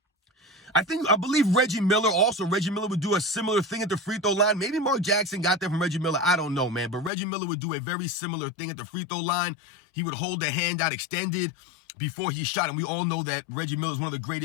I believe Reggie Miller would do a similar thing at the free throw line. Maybe Mark Jackson got that from Reggie Miller. I don't know, man. But Reggie Miller would do a very similar thing at the free throw line. He would hold the hand out extended before he shot. And we all know that Reggie Miller is one of the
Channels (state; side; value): drops out; right; at 7.1 s